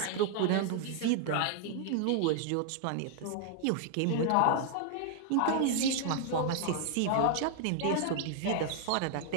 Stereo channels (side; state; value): both; different; correlation 0.00